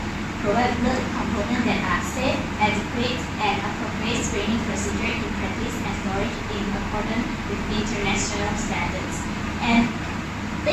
blood components that are safe, adequate, and appropriate screening procedure in practice and storage in accordance with international standards. And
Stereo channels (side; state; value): both; identical; correlation 1.00